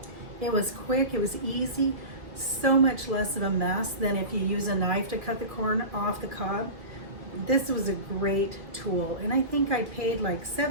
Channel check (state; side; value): late; left; 2.6 ms